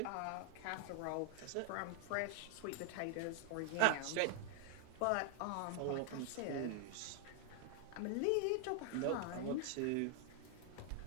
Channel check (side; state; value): both; different; correlation 0.00